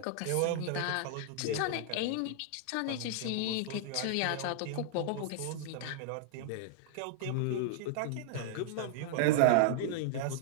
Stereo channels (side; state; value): both; different; correlation -0.01